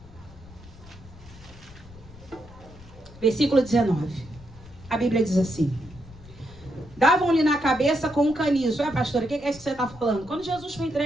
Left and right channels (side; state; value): left; noise; rumble, 20 dB below the sound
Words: Versículo 19. A Bíblia diz assim. Davam-lhe na cabeça com um caniço. Pastora, o que é isso que você está falando? Quando Jesus foi